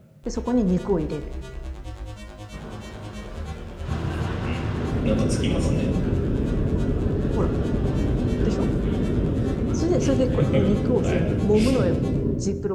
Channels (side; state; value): both; identical; correlation 1.00